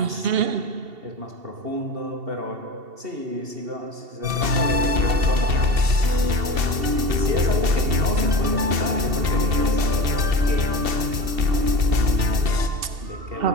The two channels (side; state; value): left; late; 2.7 ms